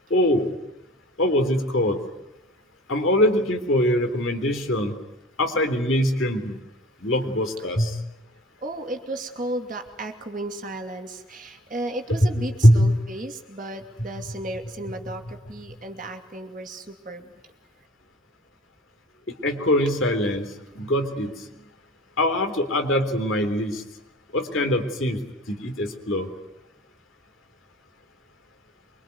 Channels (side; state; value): both; normal; correlation 0.48